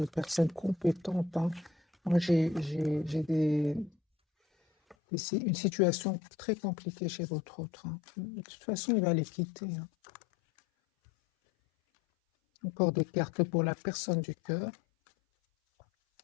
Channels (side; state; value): right; drops out; at 5.0 s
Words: personnes compétentes, hein. Moi, j'ai une situation très compliquée chez votre autre, hein. De toute façon, il va les quitter, hein. Encore des cartes pour la personne du cœur.